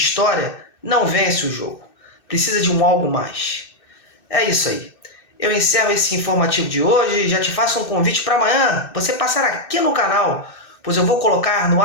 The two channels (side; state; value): right; late; 2.6 ms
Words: não vence o jogo. Precisa de um algo mais. É isso aí. Eu encerro esse informativo de hoje e já te faço um convite para amanhã você passar aqui no canal, pois eu vou colocar no